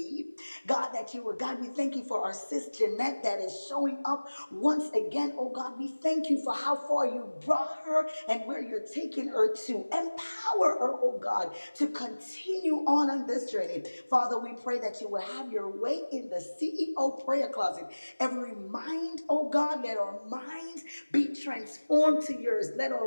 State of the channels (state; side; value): inverted; both; correlation -1.00